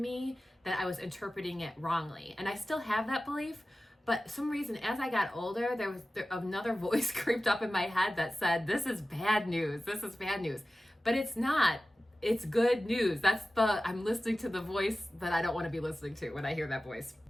that I was interpreting it wrongly. And I still have that belief. But some reason, as I got older, there was another voice creeped up in my head that said, this is bad news. This is bad news. But it's not. It's good news. I'm listening to the voice that I don't want to be listening to when I hear that voice.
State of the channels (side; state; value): both; normal; correlation 0.96